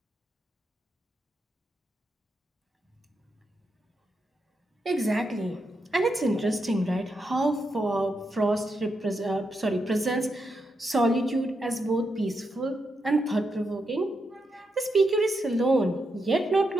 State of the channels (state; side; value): normal; both; correlation 0.84